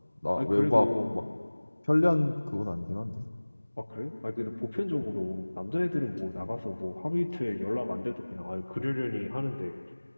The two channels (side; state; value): both; inverted; correlation -1.00